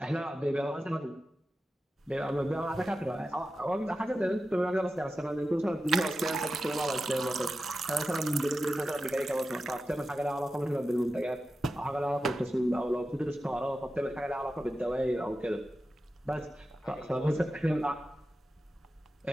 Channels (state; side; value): normal; both; correlation 0.92